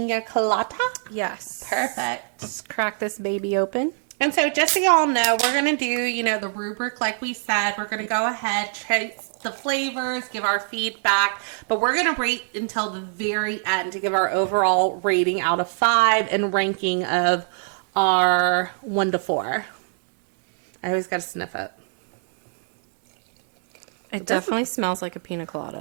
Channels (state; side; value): silent; left; digital silence